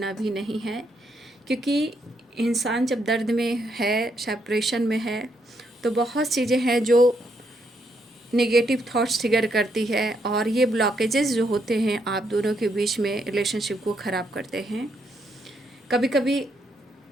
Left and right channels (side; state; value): both; normal; correlation 0.76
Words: भी नहीं है, क्योंकि इंसान जब दर्द में है, सेपरेशन में है, तो बहुत चीज़ें हैं जो नेगेटिव थॉट्स ट्रिगर करती है, और ये ब्लॉकेजेस जो होते हैं आप दोनों के बीच में रिलेशनशिप को ख़राब करते हैं। कभी कभी